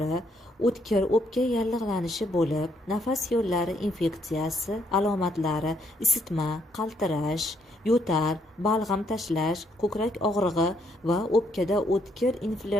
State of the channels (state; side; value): normal; both; correlation 0.73